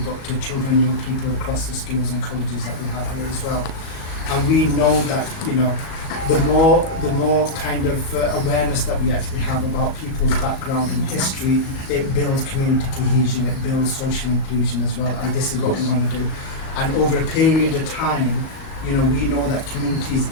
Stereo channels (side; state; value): right; late; 38 ms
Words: but to children, young people across the schools and colleges that we have here as well. And we know that the more kind of awareness that we actually have about people's background and history, it builds community cohesion, it builds social inclusion as well, and this is what we want to do. And over a period of time, we know that communities